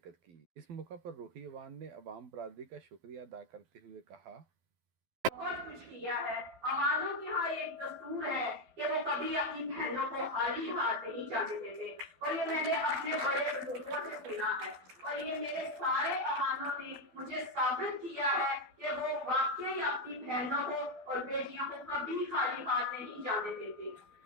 کی۔ اس موقع پر روحی عوان نے عوام برادری کا شکریہ ادا کرتے ہوئے کہا: بہت کچھ کیا ہے۔ عوانوں کے ہاں ایک دستور ہے کہ وہ کبھی اپنی بہنوں کو خالی ہاتھ نہیں جانے دیتے، اور یہ میں نے اپنے بڑے بزرگوں سے سنا ہے، اور یہ میرے سارے عوانوں نے مجھے ثابت کیا ہے کہ وہ واقعی اپنی بہنوں کو اور بیٹیوں کو کبھی خالی ہاتھ نہیں جانے دیتے۔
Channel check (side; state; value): left; late; 12 ms